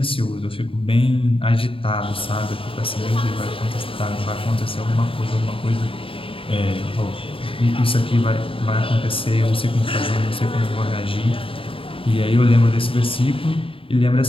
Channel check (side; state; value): right; late; 0.26 ms